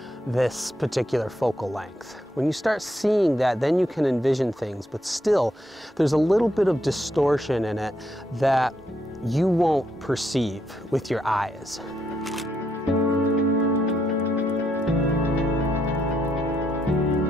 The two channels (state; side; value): normal; both; correlation 0.77